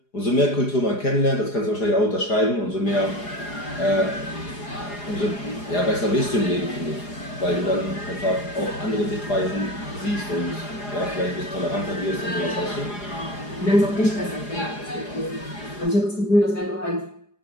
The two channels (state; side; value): late; right; 4.9 ms